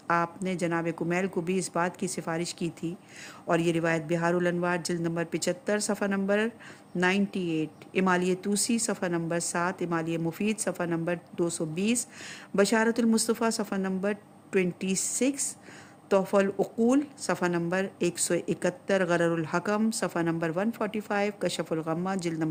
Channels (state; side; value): identical; both; correlation 1.00